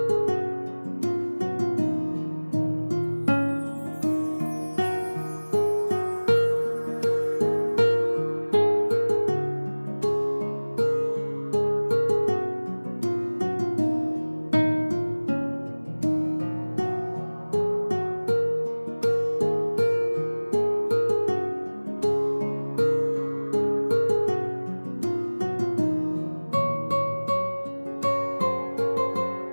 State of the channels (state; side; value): inverted; both; correlation -1.00